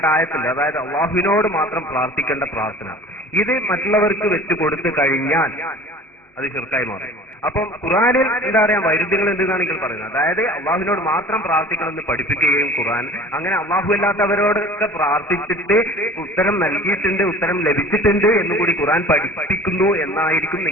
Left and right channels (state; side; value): normal; both; correlation 0.43